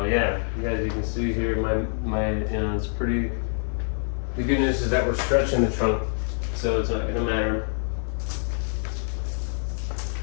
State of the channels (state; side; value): silent; right; 58 dB below the other